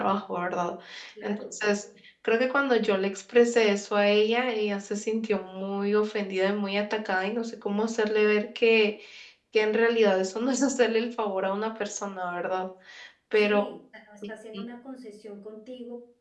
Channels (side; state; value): both; identical; correlation 1.00